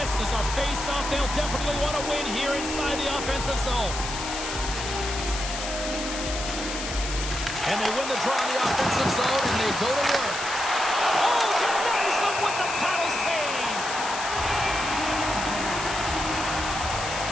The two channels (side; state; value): left; noise; hiss, 6 dB below the sound